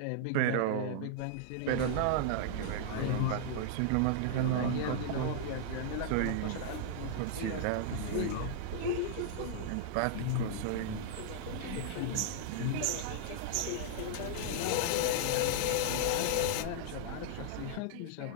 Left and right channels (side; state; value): both; different; correlation -0.01